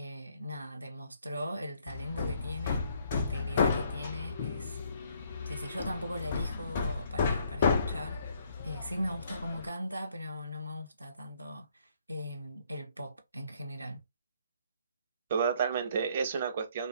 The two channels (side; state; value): both; inverted; correlation -0.67